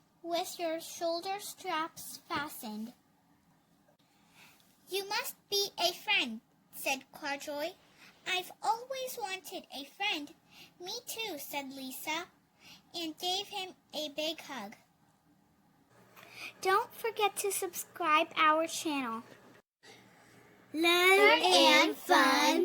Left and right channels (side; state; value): both; identical; correlation 1.00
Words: with your shoulder straps fastened." "You must be a friend," said Corduroy. "I've always wanted a friend." "Me too," said Lisa, and gave him a big hug. Don't forget to subscribe our channel. Learn and